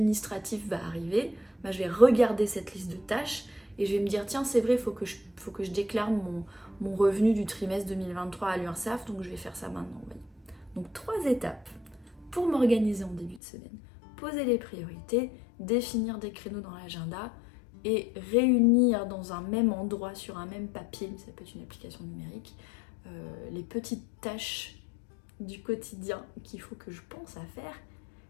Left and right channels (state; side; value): drops out; right; at 13.4 s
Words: va arriver, bah, je vais regarder cette liste de tâches et je vais me dire tiens c'est vrai, faut que je déclare mon revenu du trimestre 2023 à l'URSSAF, donc je vais faire ça maintenant. Voyez. Donc 3 étapes pour m'organiser en début de semaine. Poser les priorités, définir des créneaux dans l'agenda et réunir dans un même endroit, sur un même papier, ça peut être une application numérique, les petites tâches du quotidien qu'il faut que je pense à faire